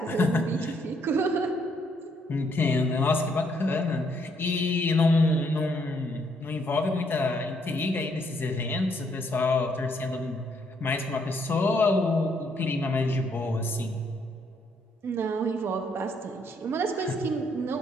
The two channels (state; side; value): normal; both; correlation 0.71